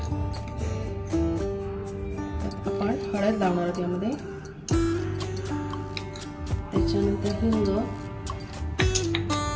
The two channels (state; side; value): identical; both; correlation 1.00